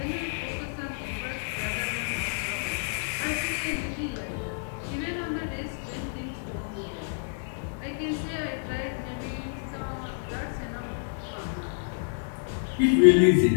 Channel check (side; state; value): right; silent; 59 dB below the other